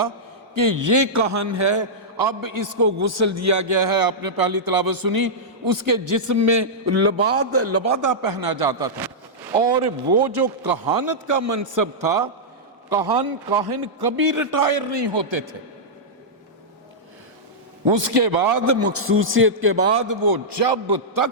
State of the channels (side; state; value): both; normal; correlation -0.11